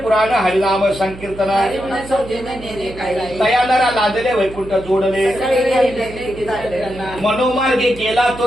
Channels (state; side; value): noise; right; hum, 16 dB below the sound